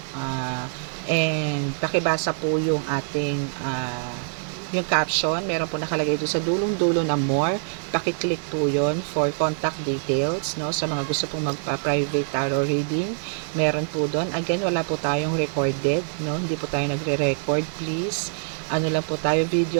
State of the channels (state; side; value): silent; left; 62 dB below the other